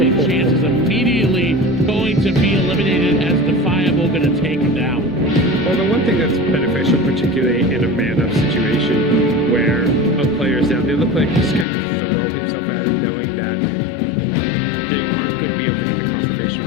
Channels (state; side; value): drops out; right; at 11.7 s